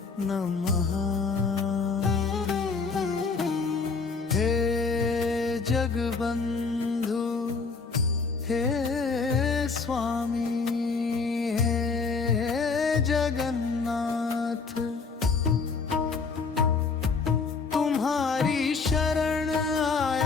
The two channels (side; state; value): right; quieter; 4.7 dB